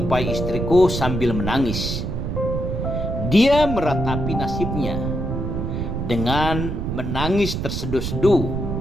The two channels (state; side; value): noise; right; rumble, 3 dB below the sound